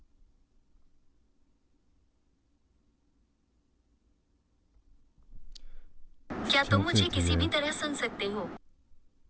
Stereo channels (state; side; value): identical; both; correlation 1.00